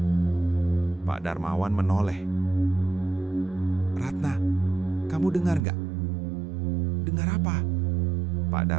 Pak Darmawan menoleh. "Ratna, kamu dengar nggak?" "Dengar apa?" Pak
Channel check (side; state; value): left; drops out; at 5.6 s